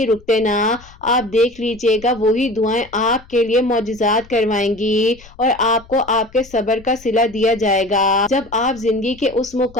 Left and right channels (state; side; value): noise; left; rumble, 23 dB below the sound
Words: रुकते ना, आप देख लीजिए دیجیے گا وہی دعائیں آپ کے لیے معجزات کروائیں گی اور آپ کو آپ کے صبر کا صلہ دیا جائے گا۔ جب آپ زندگی کے اس